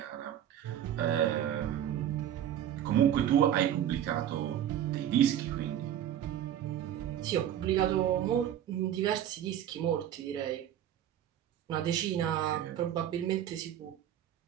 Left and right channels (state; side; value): quieter; left; 10.7 dB